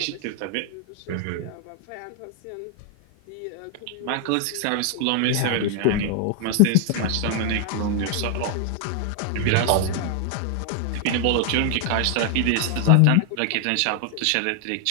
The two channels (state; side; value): different; both; correlation 0.00